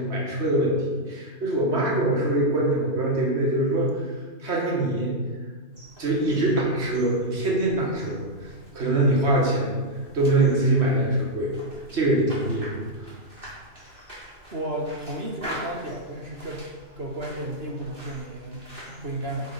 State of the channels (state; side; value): late; left; 3.2 ms